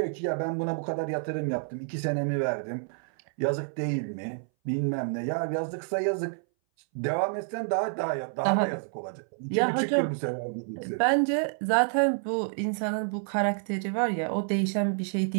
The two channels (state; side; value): silent; left; 59 dB below the other